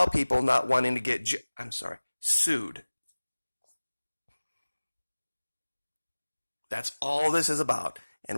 people not wanting to get, sued. That's all this is about.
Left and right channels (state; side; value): inverted; both; correlation -1.00